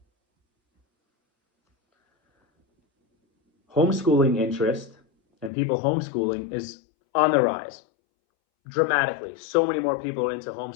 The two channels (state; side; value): drops out; right; at 5.5 s